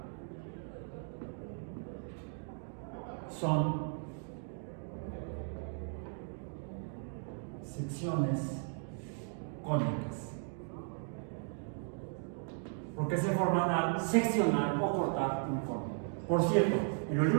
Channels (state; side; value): silent; left; 54 dB below the other